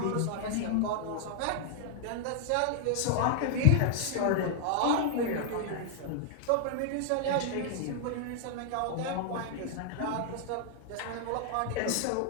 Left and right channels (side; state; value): both; different; correlation 0.00